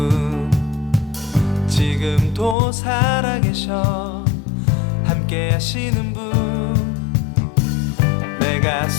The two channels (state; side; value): drops out; right; at 2.6 s